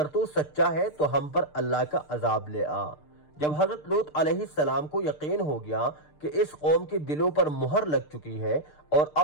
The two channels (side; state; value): right; late; 6.6 ms